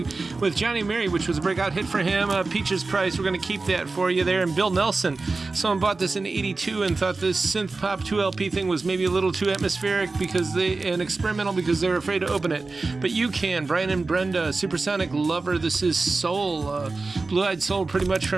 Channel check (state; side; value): quieter; left; 3.7 dB